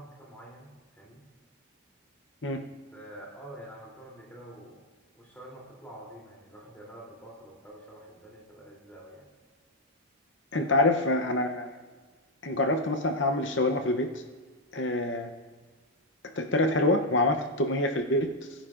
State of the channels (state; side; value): normal; both; correlation 0.01